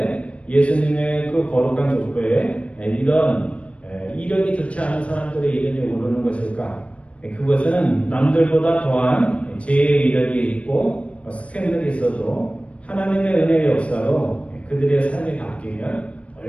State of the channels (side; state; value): right; late; 0.062 ms